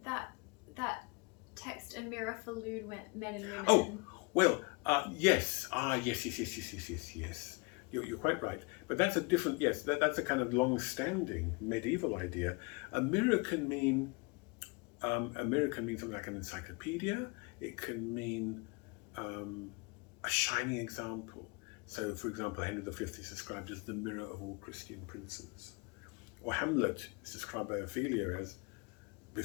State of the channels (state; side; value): quieter; right; 29.6 dB